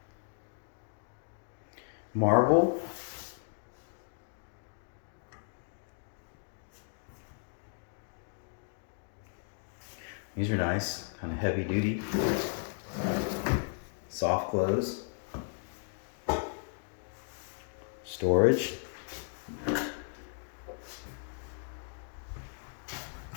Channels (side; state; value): right; silent; digital silence